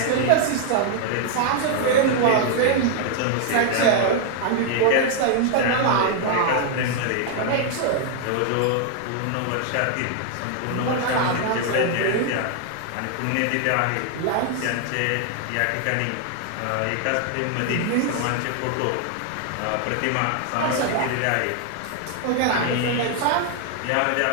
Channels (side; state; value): both; different; correlation 0.00